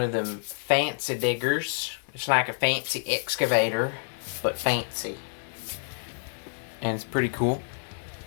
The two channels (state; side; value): silent; right; digital silence